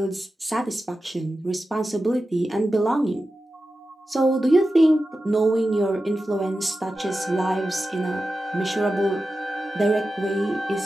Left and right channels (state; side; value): normal; both; correlation 0.92